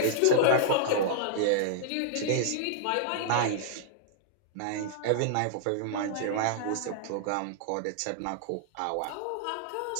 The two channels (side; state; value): both; different; correlation -0.01